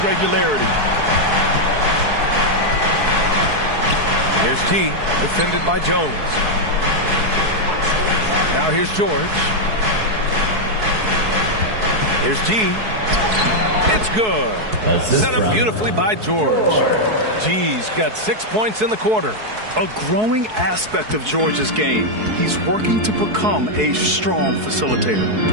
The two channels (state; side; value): late; left; 4.7 ms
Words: regularity. Here's T, defended by Jones. Now here's George. Here's G. It's good. Set up beautifully by George. G's got 6 points in the quarter. A growing aspect of George's game. He's working to become a strong